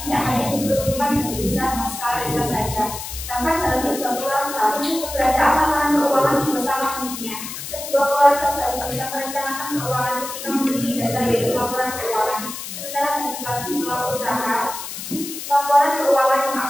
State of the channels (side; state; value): left; noise; hiss, 8 dB below the sound